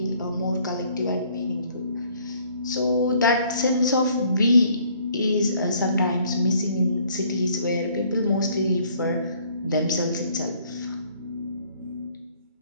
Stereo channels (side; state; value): both; inverted; correlation -0.61